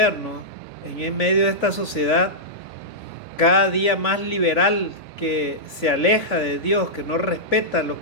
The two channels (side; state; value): right; late; 4.0 ms